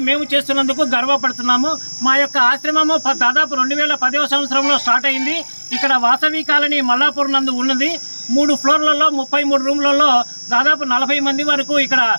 మేము చేస్తున్నందుకు గర్వపడుతున్నాము. మా యొక్క ఆశ్రమము దాదాపు 2010వ సంవత్సరంలో స్టార్ట్ అయింది. ఇక్కడ వాసవి కాలనీ మల్లాపూర్ నందు ఉన్నది. 3 ఫ్లోర్లలో 33 రూమ్లలో దాదాపు 40 మంది వరకు ఇక్కడ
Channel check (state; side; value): inverted; both; correlation -1.00